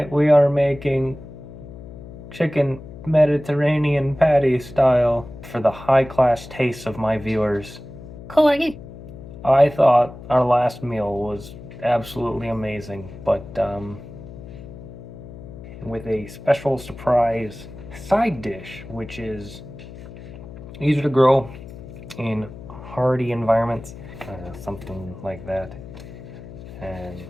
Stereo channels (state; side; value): noise; left; hum, 15 dB below the sound